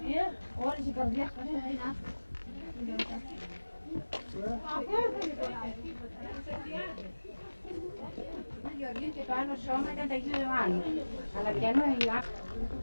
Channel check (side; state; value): both; inverted; correlation -1.00